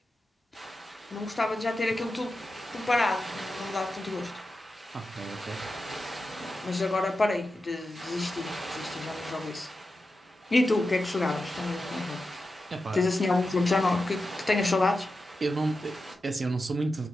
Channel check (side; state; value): both; normal; correlation 0.91